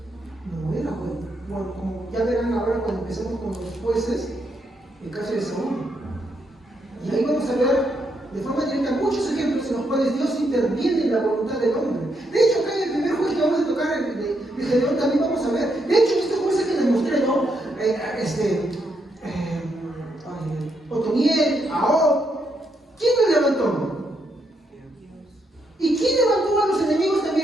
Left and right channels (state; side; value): normal; both; correlation 0.78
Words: No era bueno. Bueno, como ya verán ahora cuando empezamos con los jueces, el caso de Saúl. Y ahí vamos a ver de forma directa muchos ejemplos en los cuales Dios interviene en la voluntad del hombre. De hecho, acá en el primer juez que vamos a tocar, el de Gedeón, también vamos a ver. De hecho, estos jueces que les mostré, ¿no? Otoniel, Ahod, ¿quién los levantó? ¿Y quién levantó a los enemigos